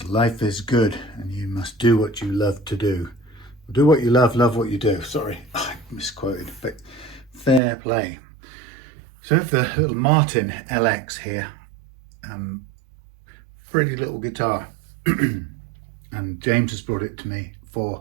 life is good and you must do what you love to do. Do what you love what you do. Sorry, I misquoted, but fair play. So I have the little Martin LX here. Pretty little guitar. And James has brought it to me for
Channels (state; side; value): drops out; left; at 7.6 s